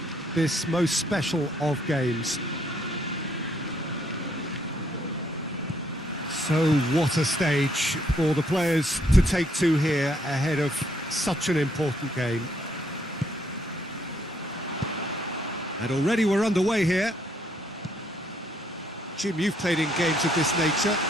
this most special of games. So what a stage for the players to take to here ahead of such an important game. And already we're underway here. Jim, you've played in games of this nature.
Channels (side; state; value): both; normal; correlation 0.70